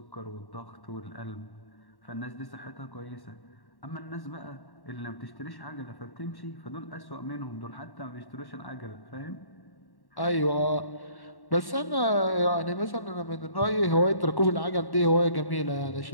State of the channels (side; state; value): right; late; 1.1 ms